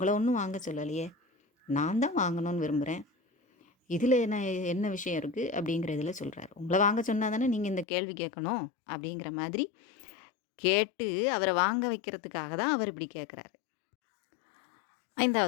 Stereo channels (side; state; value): right; drops out; at 7.9 s